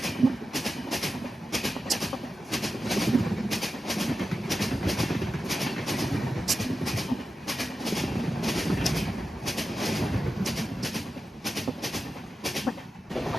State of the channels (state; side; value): normal; both; correlation 0.91